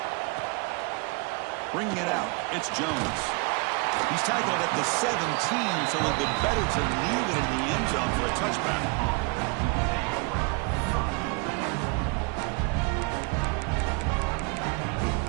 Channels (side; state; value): left; quieter; 30.9 dB